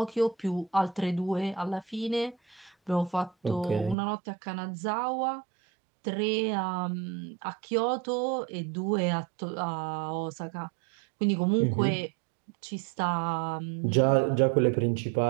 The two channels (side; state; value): left; drops out; at 4.0 s